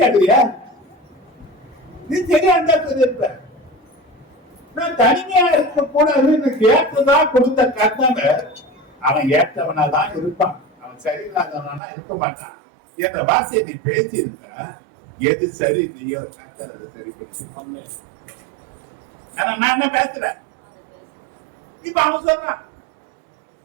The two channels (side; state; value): left; drops out; at 11.8 s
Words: நீ சரியா இருந்தா இருப்ப. நான் தனிமையா இருக்க கூடாதுன்னு ஏற்றதான் கொடுத்த கர்த்தனை அவன் ஏற்றவனா தான் இருப்பான். அவன் சரியில்லாதவனா இருக்க மாட்டான். என்ற வார்த்தையை நீ பேசியிருந்த எது சரி இல்லையோ கர்த்தர் அதை சரிப்படுத்தி. ஆனா நான் என்ன பேசுறேன்? இப்ப அவன் சொல்றான்,